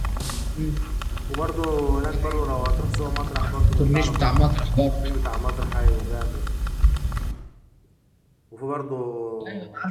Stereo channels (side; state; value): both; identical; correlation 1.00